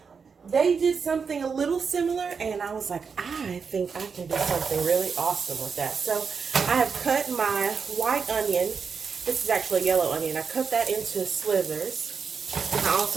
they did something a little similar, and I was like, I think I can do something really awesome with that. So I have cut my white onion. This is actually a yellow onion. I cut that into slivers. I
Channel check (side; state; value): left; quieter; 5.7 dB